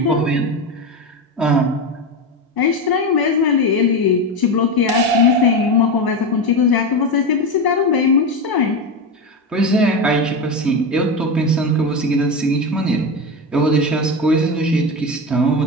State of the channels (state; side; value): normal; both; correlation 0.18